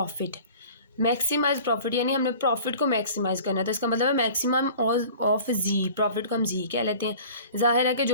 मैक्सिमाइज प्रॉफिट यानी हमने प्रॉफिट को मैक्सिमाइज़ करना है, तो इसका मतलब है मैक्सिमम ऑफ जी, प्रॉफिट को हम जी कह लेते हैं। जाहिर है कि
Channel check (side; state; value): both; inverted; correlation -0.44